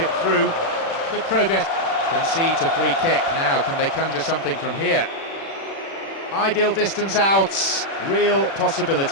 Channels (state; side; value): late; right; 36 ms